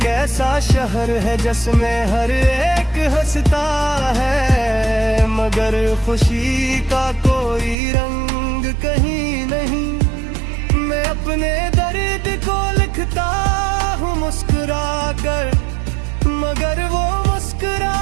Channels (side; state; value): left; drops out; at 7.8 s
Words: शहर है जिसमें हर एक हंसता है, मगर खुशी का कोई रंग कहीं नहीं। मैं अपने दर्द को लिखता हूँ मुस्कुरा कर, मगर वो